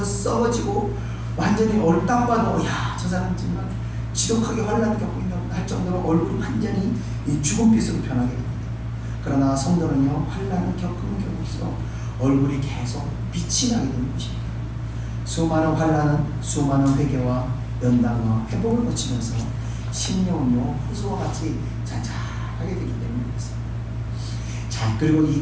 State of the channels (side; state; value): both; identical; correlation 1.00